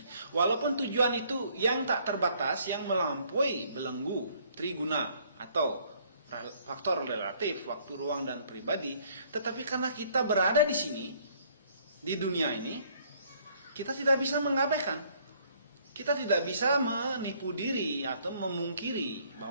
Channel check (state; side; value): inverted; both; correlation -0.62